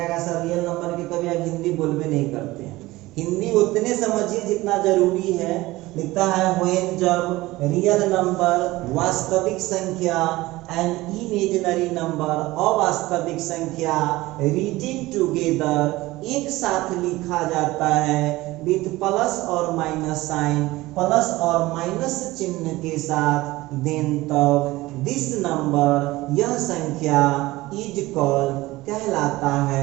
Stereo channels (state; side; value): quieter; left; 19.0 dB